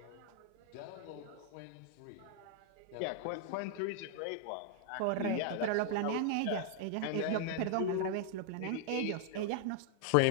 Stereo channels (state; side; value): different; both; correlation -0.01